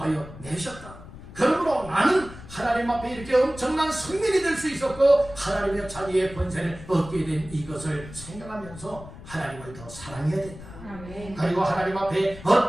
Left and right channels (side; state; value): left; noise; rumble, 15 dB below the sound